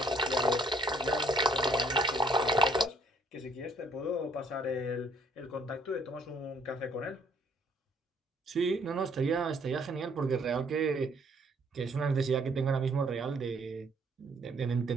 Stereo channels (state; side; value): normal; both; correlation 0.64